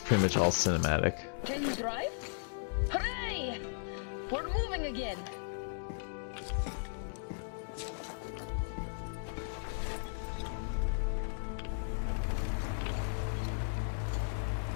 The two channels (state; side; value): silent; right; digital silence